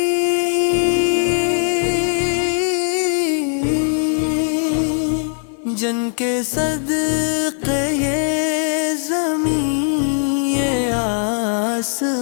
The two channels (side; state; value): right; silent; 57 dB below the other